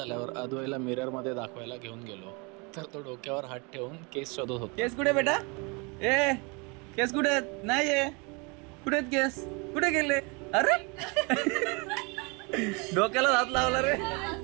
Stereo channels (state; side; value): quieter; left; 30.1 dB